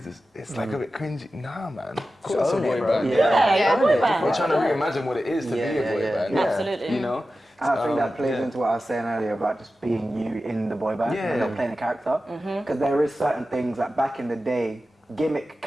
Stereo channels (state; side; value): normal; both; correlation 0.93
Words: it's like a bit cringy. Nah, man. Call us a own it, boy bro. band. Yeah, boy band. We're trying to reimagine what it is to be a boy band. Absolutely. You know? I think that plays into what I was saying earlier about just being you in the boy band and not playing a character. Because there is certain things that back in the day, gimmick